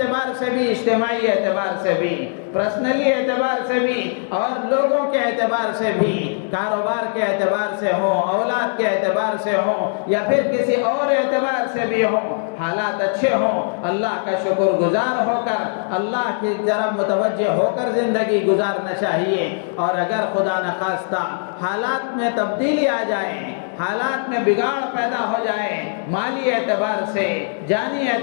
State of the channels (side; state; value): right; silent; digital silence